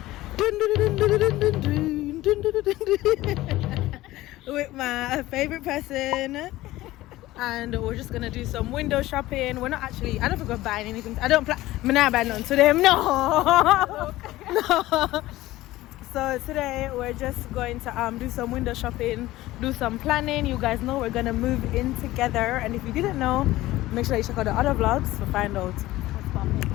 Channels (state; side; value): quieter; right; 17.0 dB